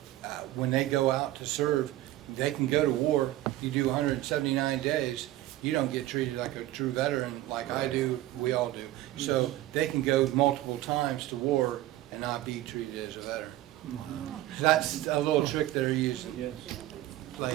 when they go out to serve, they can go to war, you do 179 days, you don't get treated like a true veteran like I do, we all do. So they can go multiple times to war and not be treated as a veteran. So that's a little trick they're using.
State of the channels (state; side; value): quieter; left; 15.3 dB